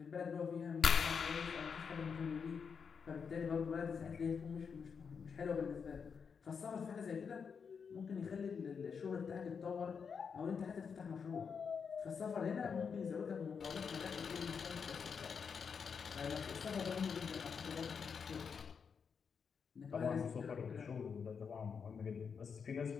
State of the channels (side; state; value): right; quieter; 6.2 dB